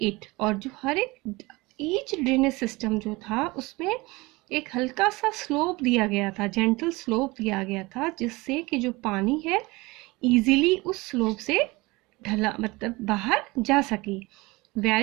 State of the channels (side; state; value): left; quieter; 22.9 dB